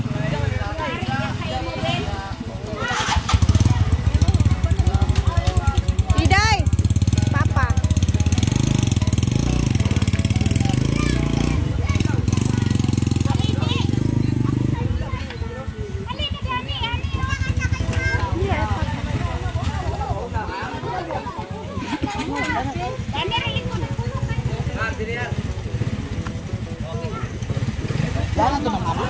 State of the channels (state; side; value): identical; both; correlation 1.00